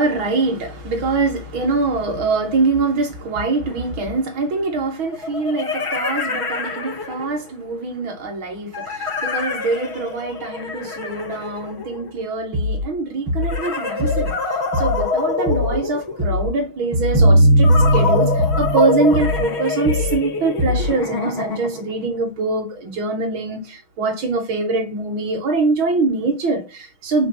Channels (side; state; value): left; late; 6.3 ms